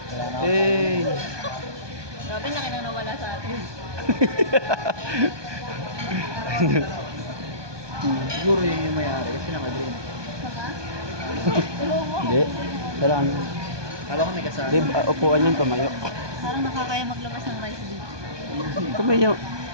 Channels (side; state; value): left; late; 1.2 ms